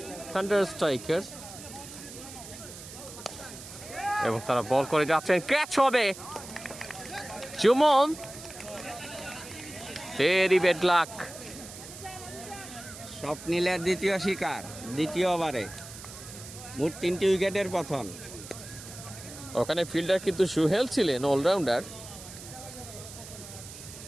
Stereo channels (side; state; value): right; noise; hiss, 14 dB below the sound